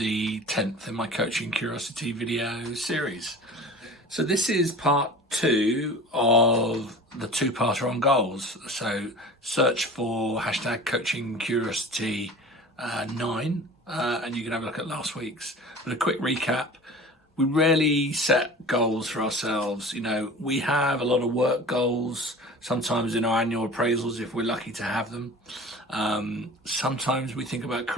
10th in my Coaching Curiosity video series. So this is part 2 of the two-parter on goals. So search for hashtag Coaching Curiosity 9 and you can have a look at last week's. But a quick recap, we rarely set goals for ourselves. You know, we have a lot of work goals, sometimes in our annual appraisals if we're lucky to have them. Sometimes we think about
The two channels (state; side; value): normal; both; correlation 0.39